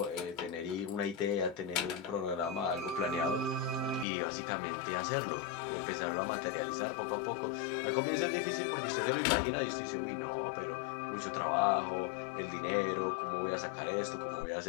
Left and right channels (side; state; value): right; drops out; at 4.0 s